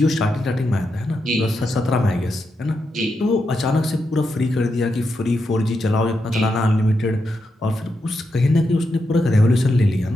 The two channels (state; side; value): normal; both; correlation 0.85